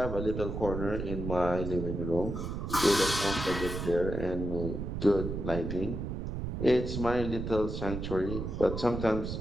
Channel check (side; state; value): right; noise; rumble, 4 dB below the sound